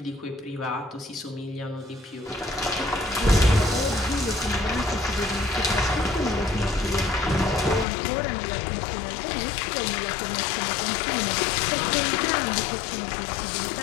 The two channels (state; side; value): drops out; right; at 7.9 s